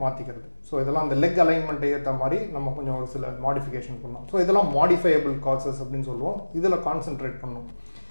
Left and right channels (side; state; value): both; inverted; correlation -1.00